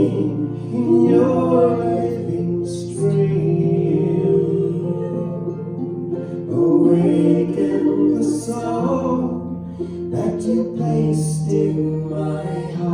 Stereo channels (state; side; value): identical; both; correlation 1.00